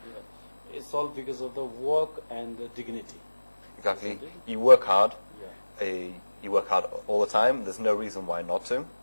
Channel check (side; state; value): both; inverted; correlation -1.00